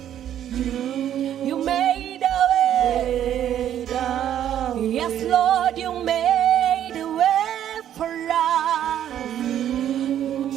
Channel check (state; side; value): quieter; left; 10.7 dB